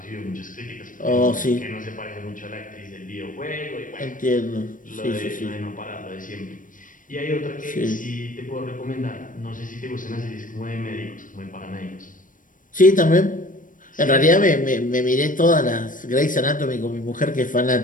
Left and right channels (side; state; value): right; late; 0.38 ms